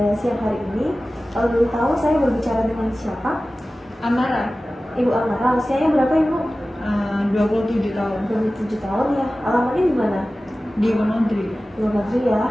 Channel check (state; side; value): normal; both; correlation 0.96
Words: siang hari ini. Kalau boleh tahu, saya berbicara dengan siapa? Amara, Ibu Amara. Usianya berapa, Ibu? 27 tahun, 27 tahun ya. Alamatnya di mana? di Wonodri. Luar negeri ya.